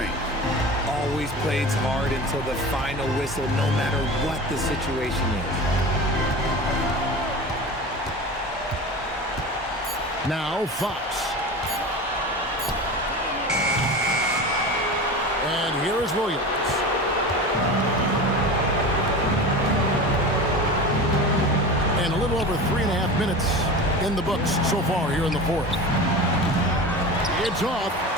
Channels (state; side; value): normal; both; correlation 0.31